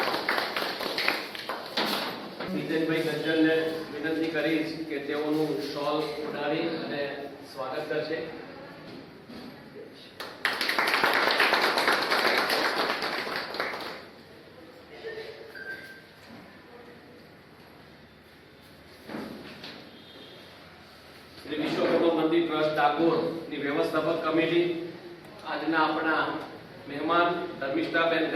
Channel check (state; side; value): identical; both; correlation 1.00